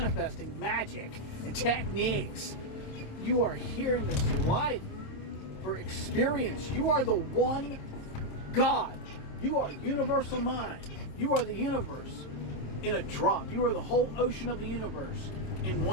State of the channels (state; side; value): late; right; 26 ms